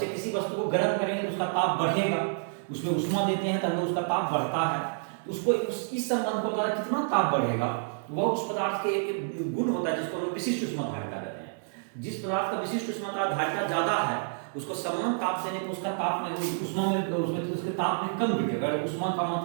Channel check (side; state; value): left; silent; digital silence